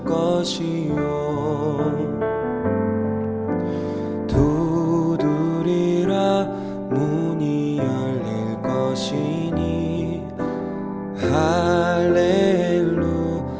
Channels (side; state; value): both; identical; correlation 1.00